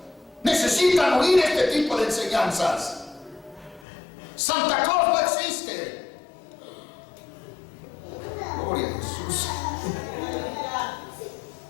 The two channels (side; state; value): right; drops out; at 3.9 s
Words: Necesitan oír este tipo de enseñanzas. Santa Claus no existe. Gloria a Jesús.